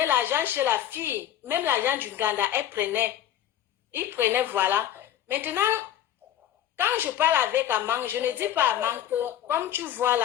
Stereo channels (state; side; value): quieter; right; 11.3 dB